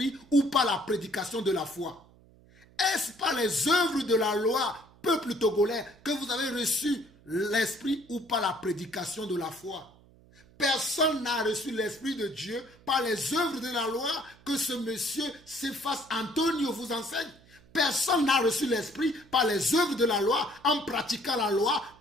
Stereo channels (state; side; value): noise; right; hum, 27 dB below the sound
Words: ou par la prédication de la foi? Est-ce par les œuvres de la loi, peuple togolais, que vous avez reçu l'esprit ou par la prédication de la foi? Personne n'a reçu l'esprit de Dieu par les œuvres de la loi que ce monsieur Cephas Antonio vous enseigne. Personne n'a reçu l'esprit par les œuvres de la loi en pratiquant la loi.